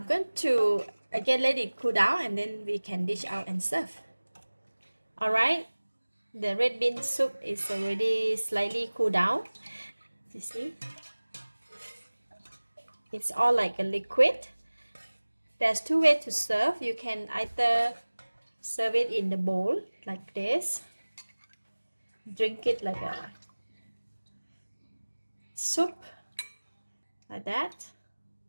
going to again let it cool down and then we can dish out and serve. Alright, the red bean soup is already slightly cooled down. You see? It's all like a liquid. There's two ways to serve. You can either serve it in the bowl like this, drink it like a soup like that,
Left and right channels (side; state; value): both; inverted; correlation -1.00